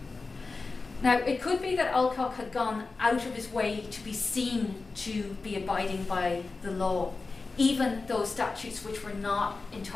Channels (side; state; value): right; quieter; 3.9 dB